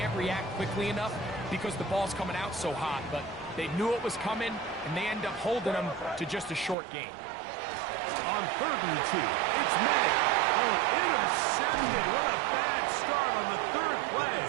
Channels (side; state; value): left; drops out; at 6.8 s